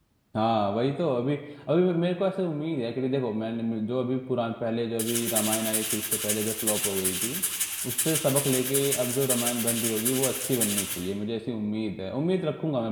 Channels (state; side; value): identical; both; correlation 1.00